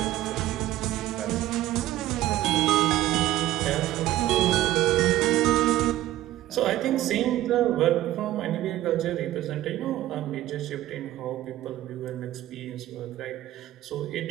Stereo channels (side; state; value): left; quieter; 14.4 dB